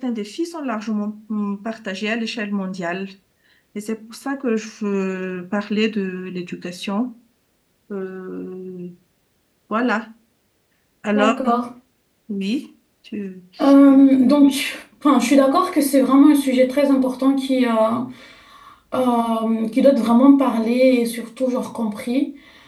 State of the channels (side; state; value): both; identical; correlation 1.00